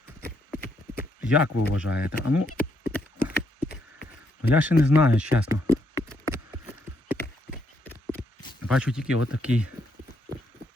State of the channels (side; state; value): both; normal; correlation 0.75